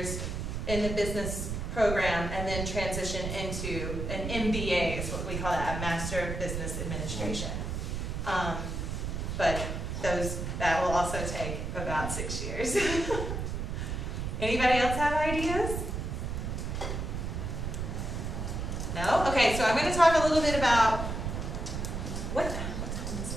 in the business program and then transition into an MBA, is what we call that, a Master of Business Administration. But that will also take about 6 years. Anybody else have ideas? No? Okay, so I'm going to talk a little bit about what time is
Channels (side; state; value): right; noise; rumble, 3 dB below the sound